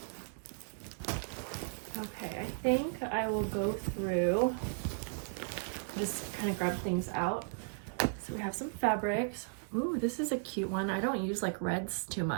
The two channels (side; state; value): left; silent; digital silence